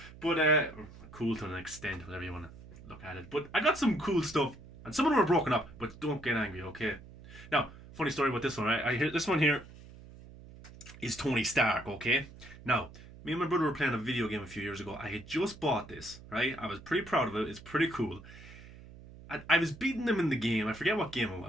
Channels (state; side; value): noise; right; hum, 18 dB below the sound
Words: but cool to an extent, whatever you want to look at it. But I got some cool stuff, and some of them are broken up, but don't get angry, okay? Now, funny story about this one, right? I hear this one here is Tony Stark, okay? Now, me and my brother were playing a video game a few years ago. I had just bought this, right? I was pretty proud of it. It's pretty cool. I was beating him in the game. I forget what game it